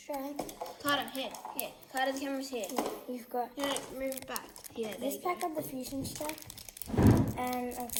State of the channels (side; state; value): both; identical; correlation 1.00